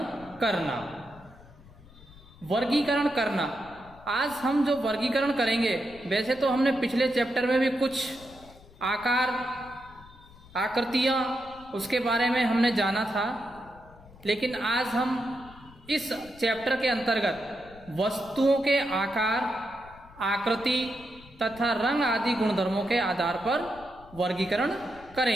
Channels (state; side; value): noise; left; rumble, 22 dB below the sound